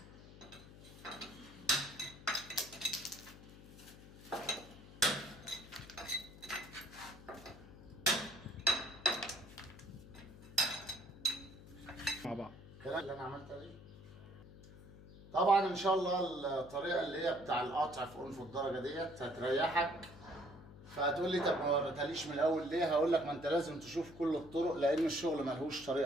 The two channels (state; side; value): noise; left; hum, 18 dB below the sound